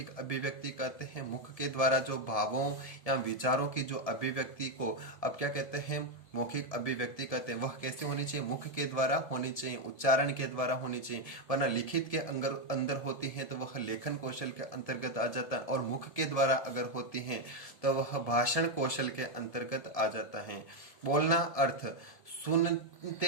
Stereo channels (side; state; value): right; late; 1.7 ms